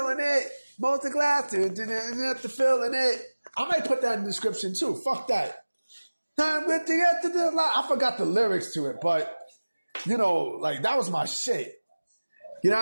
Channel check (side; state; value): both; inverted; correlation -1.00